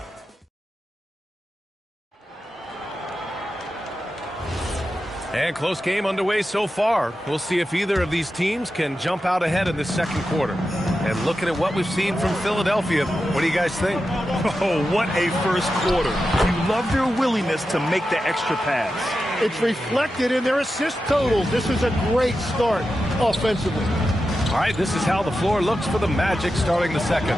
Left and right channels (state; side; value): normal; both; correlation 0.91